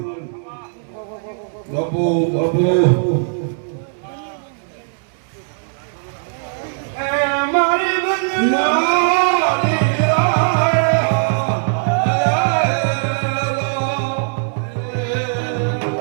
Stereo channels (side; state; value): left; silent; 67 dB below the other